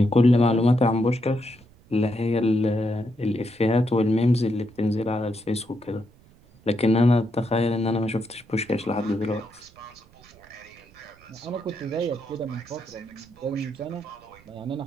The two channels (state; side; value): noise; right; rumble, 27 dB below the sound